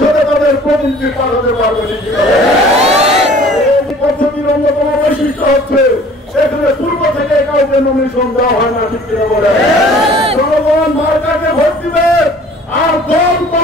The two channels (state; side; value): normal; both; correlation 0.50